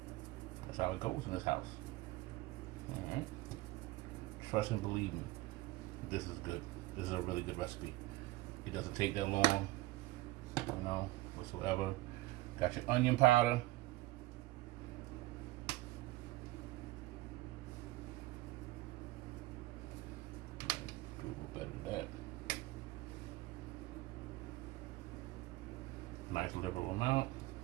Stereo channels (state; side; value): quieter; left; 18.5 dB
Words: That's how it goes in this house. All right. Trust and believe me, this is good. This is a really good recipe. It doesn't take that long, whatsoever. Got your onion powder. Do a little better than that. Nice liberal amount.